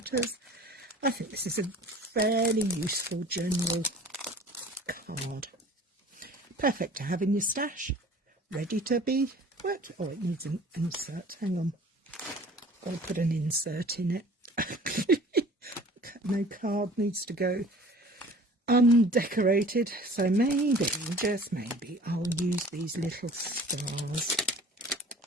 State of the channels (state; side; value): normal; both; correlation 0.47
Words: I think this is a fairly useful general card. Perfect to have in your stash, ready to be worked. Oh, it needs an insert, hang on. Got to put an insert in it. No card needs to go undecorated, so maybe, just maybe, I'll use these little stars,